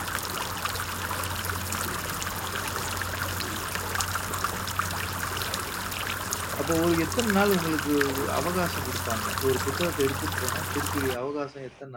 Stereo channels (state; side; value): identical; both; correlation 1.00